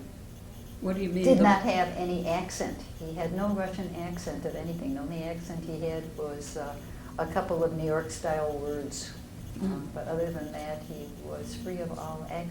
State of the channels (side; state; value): both; identical; correlation 1.00